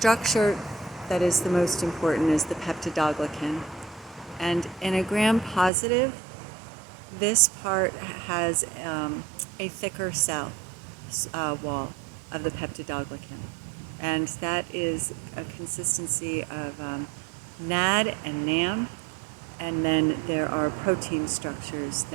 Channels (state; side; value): drops out; left; at 5.7 s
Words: that is the most important is the peptidoglycan. And in a Gram positive, this part has a thicker cell wall of the peptidoglycan. And that is a consistency of NAD and NAM, and then there are protein structures